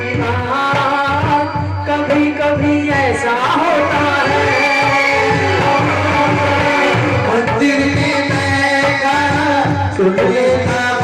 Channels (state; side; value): identical; both; correlation 1.00